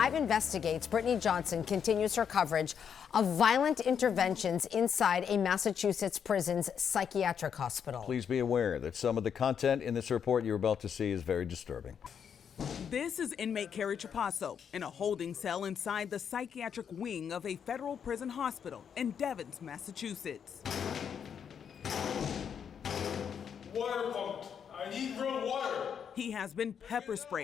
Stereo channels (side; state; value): right; quieter; 7.7 dB